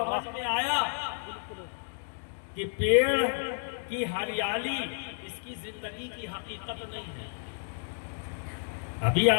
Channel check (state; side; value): silent; right; digital silence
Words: में आया कि पेड़ की हरियाली इसकी जिंदगी की हकीकत नहीं है। अभी